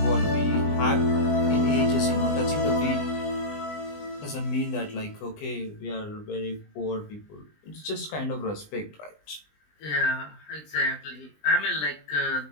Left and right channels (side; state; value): right; late; 20 ms